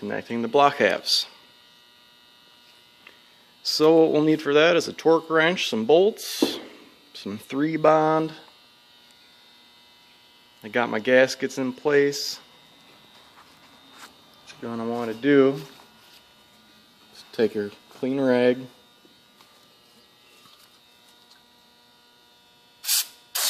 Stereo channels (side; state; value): both; identical; correlation 1.00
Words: the block halves. So what we'll need for that is a torque wrench, some bolts, some 3-bond. I got my gaskets in place. What you're going to want to do is take your clean rag,